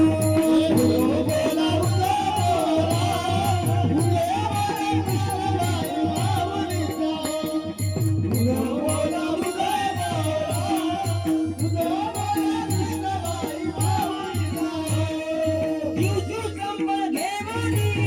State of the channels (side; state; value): both; identical; correlation 1.00